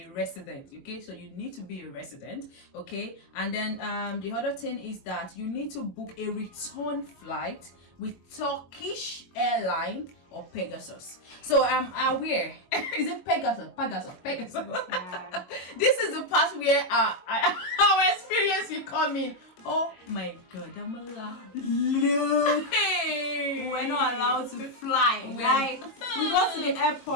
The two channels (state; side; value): late; right; 22 ms